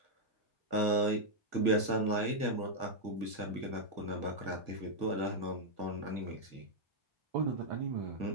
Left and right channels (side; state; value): left; late; 1.6 ms